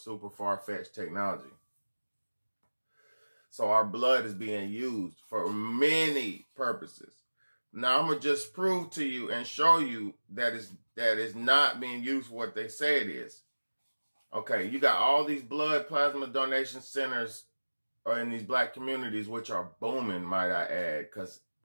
far-fetched technology. So our blood is being used for many purposes. Now I'm gonna just prove to you and show you that it's not being used for what they say it is. Okay, you got all these blood plasma donation centers in these black communities, which are booming, might I add, because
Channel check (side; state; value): both; inverted; correlation -1.00